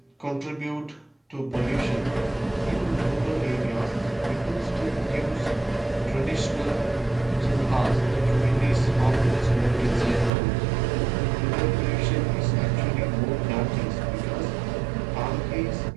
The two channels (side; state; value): left; drops out; at 10.3 s